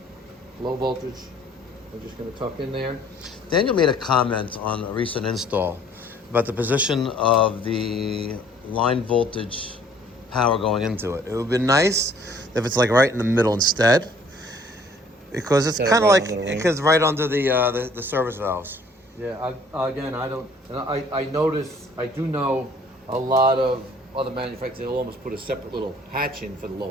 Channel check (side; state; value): both; normal; correlation 0.57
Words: voltage. I'm just going to tuck in there. Daniel made a comment on a recent install about the position of the line voltage power going into it. It would be nice if it's like right in the middle instead, because it's Yeah, kind of right like under the ring. because right under the service valves. Yeah, I notice, I do know a lot of other manufacturers, they'll almost put a separate little hatch in for the